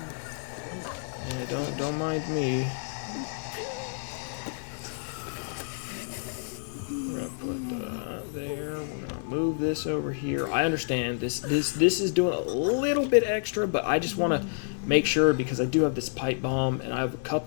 Yeah, don't mind me. this over here. I understand this is doing a little bit extra, but I just want to make sure because I do have this pipe bomb and I have a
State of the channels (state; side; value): silent; right; digital silence